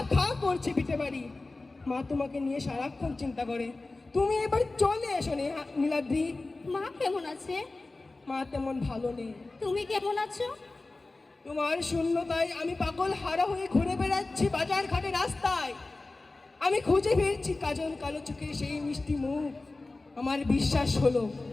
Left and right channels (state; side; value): quieter; right; 3.3 dB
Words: খা করছে পিঠে বাড়ি। মা তোমাকে নিয়ে সারাক্ষণ চিন্তা করে। তুমি এবার চলে এসো নীলাদ্রি। মা কেমন আছে? মা তেমন ভালো নেই। তুমি কেমন আছো? তোমার শূন্যতায় আমি পাগল হারা হয়ে ঘুরে বেড়াচ্ছি বাজার ঘাটে রাস্তায়। আমি খুঁজে ফিরছি কাজল কালো চোখের সেই মিষ্টি মুখ। আমার বিশ্বাস হলো